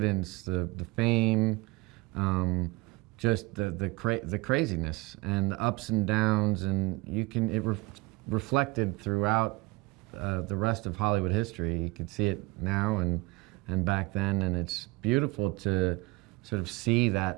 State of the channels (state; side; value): quieter; left; 24.4 dB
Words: the fame, just the craziness and the ups and downs, and reflected throughout the rest of Hollywood history. You could see it now and back then, and it's beautiful to sort of see